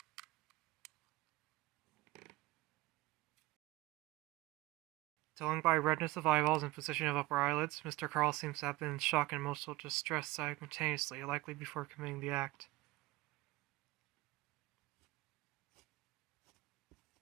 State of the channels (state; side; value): quieter; left; 19.4 dB